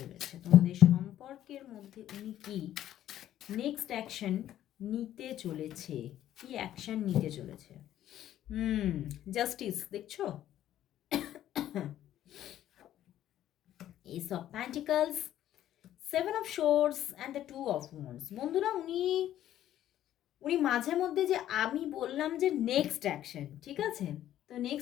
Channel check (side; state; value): right; quieter; 12.1 dB